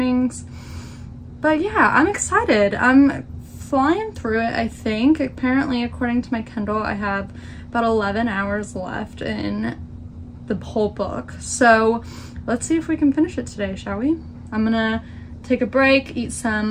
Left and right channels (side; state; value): both; identical; correlation 1.00